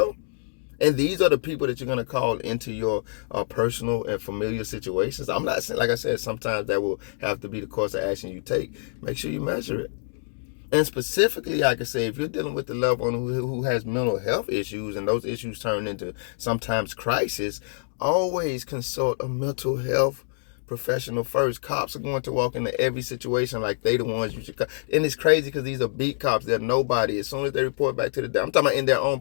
And these are the people that you're going to call into your personal and familiar situations. I'm not saying, like I said, sometimes that will have to be the course of action you take. Make sure you measure it. And specifically, I can say, if you're dealing with the loved one who has mental health issues, and those issues turn into sometimes crisis, always consult a mental health professional first. Cops are going to walk into every situation like they the ones you should. And it's crazy because these are beat cops. They're nobody. As soon as they report back to the, I'm talking about in their own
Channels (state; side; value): silent; right; digital silence